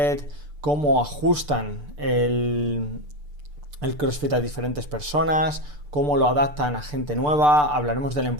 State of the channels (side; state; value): left; late; 6.8 ms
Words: cómo ajustan el CrossFit a diferentes personas, cómo lo adaptan a gente nueva. Hablaremos de la